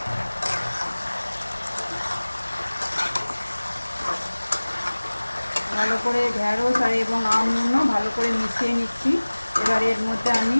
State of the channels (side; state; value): both; inverted; correlation -1.00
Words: ভালো করে ঢেঁড়স আর এবং আমগুলো ভালো করে মিশিয়ে নিচ্ছি। এবার এর মধ্যে আমি